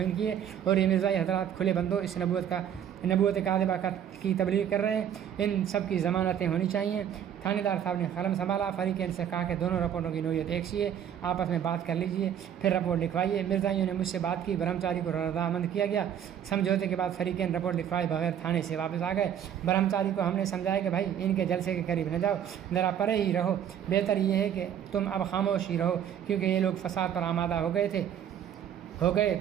کی ہے اور یہ مرزائی حضرات کھلے بندوں اس نبوت کاذبہ کی تبلیغ کر رہے ہیں، ان سب کی ضمانتیں ہونی چاہیے۔ تھانے دار صاحب نے قلم سنبھالا، فریقین سے کہا کہ دونوں رپورٹوں کی نوعیت ایک سی ہے، آپس میں بات کر لیجیے پھر رپورٹ لکھوائیے۔ مرزائیوں نے مجھ سے بات کی، برہمچاری کو رضامند کیا گیا۔ سمجھوتے کے بعد فریقین رپورٹ لکھوائے بغیر تھانے سے واپس آ گئے۔ برہمچاری کو ہم نے سمجھایا کہ بھائی ان کے جلسے کے قریب نہ جاؤ، ذرا پرے ہی رہو، بہتر یہ ہے کہ تم اب خاموش ہی رہو، کیونکہ یہ لوگ فساد پر آمادہ ہو گئے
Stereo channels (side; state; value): left; quieter; 9.4 dB